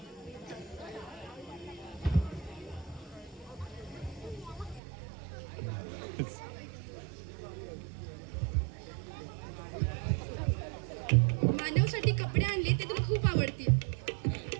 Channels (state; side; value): drops out; left; at 4.8 s